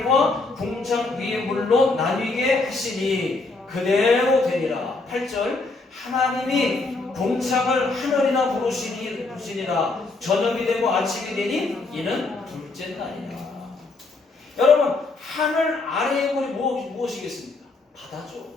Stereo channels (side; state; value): right; quieter; 3.5 dB